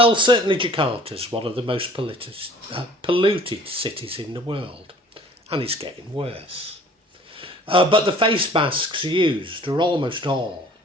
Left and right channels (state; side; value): normal; both; correlation 0.50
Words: certainly Jakarta is one of the most polluted cities in the world, and it's getting worse. But the face masks used are almost all